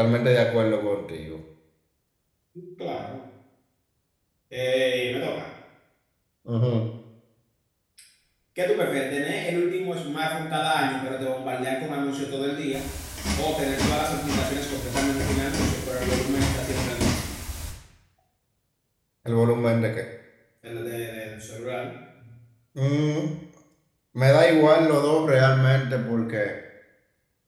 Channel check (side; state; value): both; identical; correlation 1.00